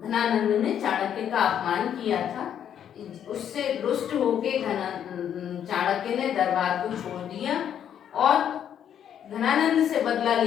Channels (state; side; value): quieter; right; 9.4 dB